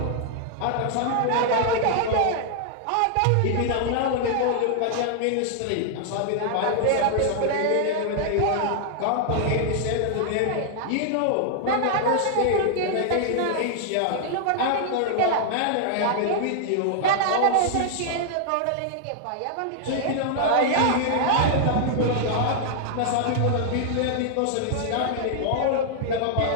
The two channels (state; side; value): different; both; correlation -0.01